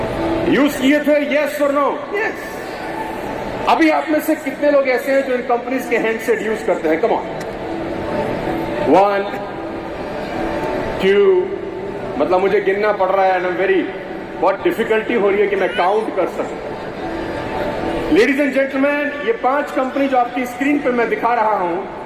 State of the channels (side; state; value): both; identical; correlation 1.00